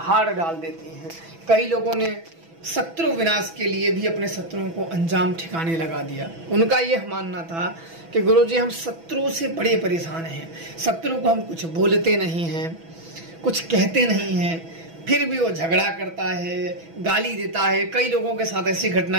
डाल देती हैं। कई लोगों ने शत्रु विनाश के लिए भी अपने शत्रुओं को अंजाम ठिकाने लगा दिया। उनका यह मानना था कि गुरुजी, हम शत्रु से बड़े परेशान हैं, शत्रु को हम कुछ बोलते नहीं हैं, कुछ कहते नहीं हैं, फिर भी वो झगड़ा करता है, गाली देता है। कई लोगों के साथ ऐसी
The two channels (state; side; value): late; left; 6.1 ms